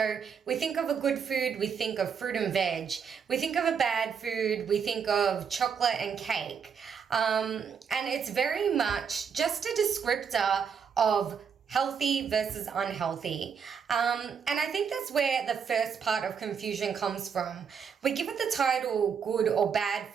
we think of a good food, we think of fruit and veg. We think of a bad food, we think of chocolate and cake. And it's very much just a descriptor of healthy versus unhealthy. And I think that's where the first part of confusion comes from. We give it the title good or bad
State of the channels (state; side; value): quieter; left; 6.8 dB